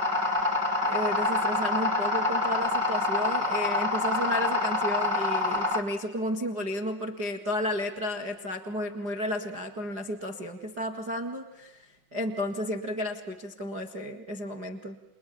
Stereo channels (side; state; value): left; late; 5.5 ms